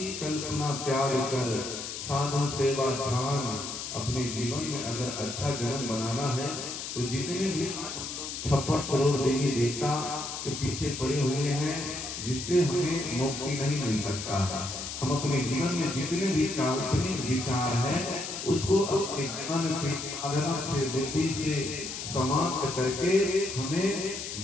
कल्पना त्याग कर साधु सेवा ध्यान, अपने जीवन में अगर अच्छा जीवन बनाना है तो जितने भी 56 करोड़ देवी देवता के पीछे पड़े हुए हैं, जिससे हमें मुक्ति नहीं मिल सकता। हम अपने जीवन में जितने भी काल्पनिक विचार है उसको अपने ज्ञान से, साधना से, बुद्धि से समाप्त करके हमें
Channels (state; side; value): noise; left; hiss, 6 dB below the sound